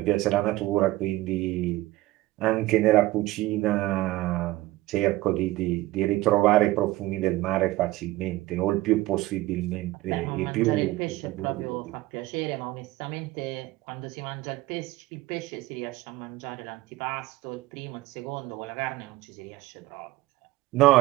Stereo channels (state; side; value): quieter; left; 17.9 dB